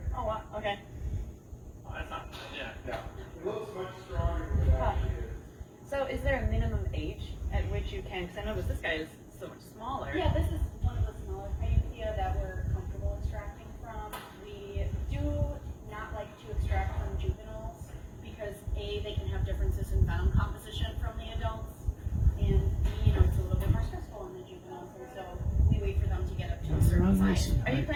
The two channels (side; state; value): both; identical; correlation 1.00